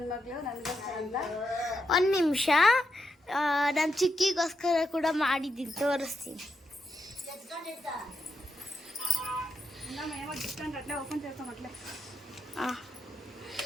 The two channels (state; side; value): normal; both; correlation 0.84